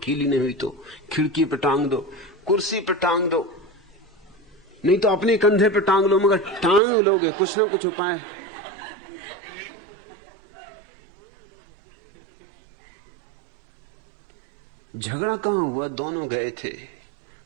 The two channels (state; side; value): drops out; left; at 6.8 s